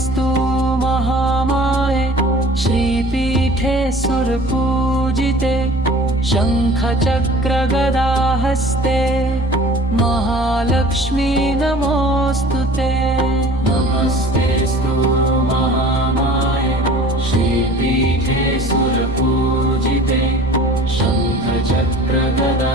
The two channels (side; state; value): both; normal; correlation 0.45